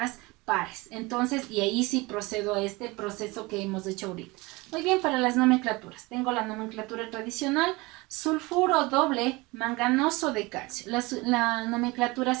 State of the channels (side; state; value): left; quieter; 23.5 dB